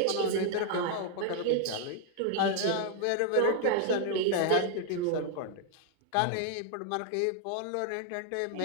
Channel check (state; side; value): different; both; correlation 0.00